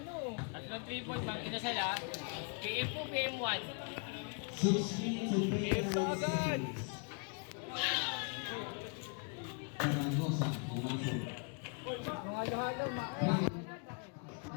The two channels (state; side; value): quieter; right; 37.8 dB